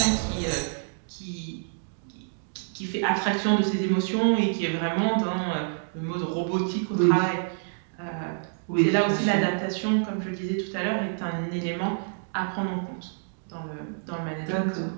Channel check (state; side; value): silent; left; digital silence